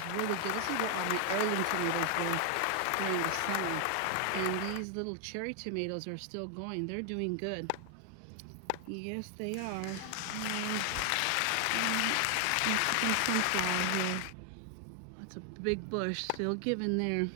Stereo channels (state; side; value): different; both; correlation 0.00